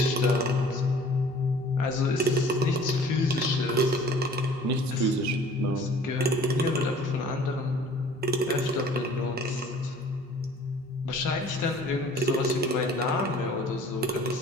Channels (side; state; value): both; normal; correlation 0.50